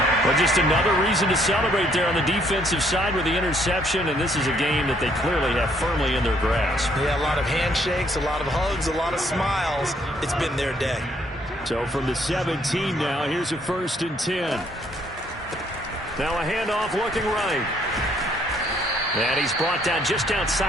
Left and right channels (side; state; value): both; normal; correlation 0.67